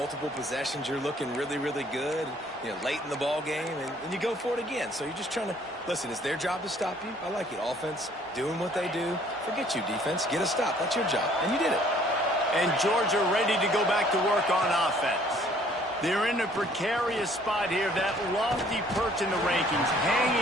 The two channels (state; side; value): normal; both; correlation 0.59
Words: possessions, you're looking really, really good, late in the ball game, and you go for it again. So you're just trying to, listen, it's their job to stop you. I like it. Offense, doing what they do. Forget you, defense. Get a stop. That's your job. And you did it. And Georgia ready to go back to work on offense. They're in a precarious spot here, that lofty perch in the rankings,